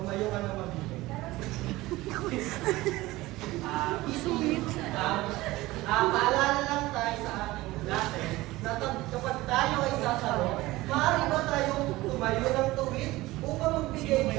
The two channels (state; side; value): quieter; left; 18.8 dB